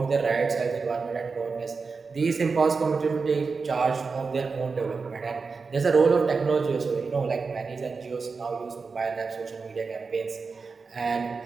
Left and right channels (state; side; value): quieter; left; 4.7 dB